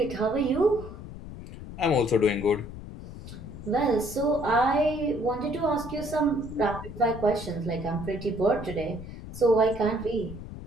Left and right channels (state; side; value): noise; left; rumble, 12 dB below the sound